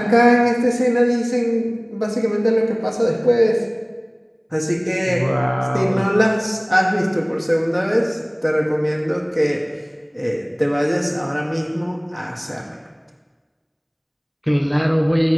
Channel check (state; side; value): identical; both; correlation 1.00